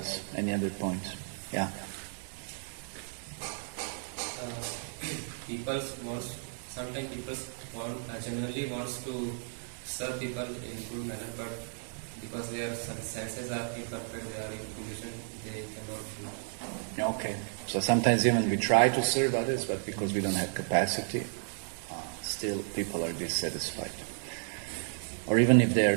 Any other points? Yeah. Sometimes people generally wants to serve people in good manner, but because their senses are imperfect, they are in condition, they cannot do. Okay. So sometimes even we try to serve others, but because we don't have capacity, still people are dissatisfied. Or even if they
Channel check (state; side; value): silent; left; 56 dB below the other